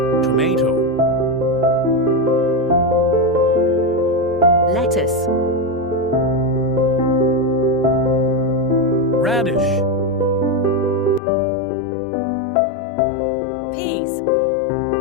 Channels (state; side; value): drops out; right; at 11.2 s